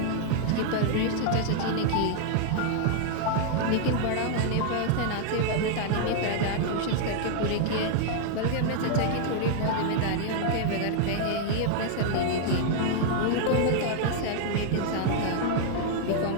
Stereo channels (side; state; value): both; different; correlation 0.00